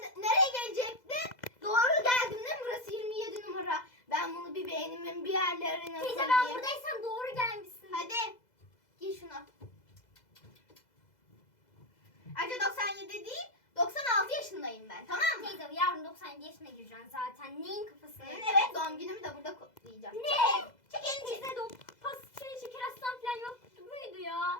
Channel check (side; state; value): right; late; 2.0 ms